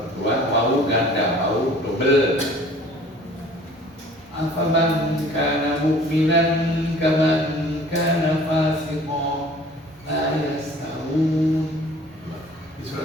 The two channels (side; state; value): both; normal; correlation 0.49